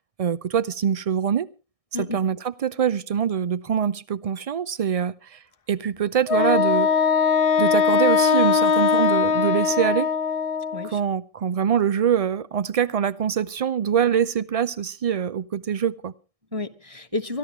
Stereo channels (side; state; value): left; late; 1.6 ms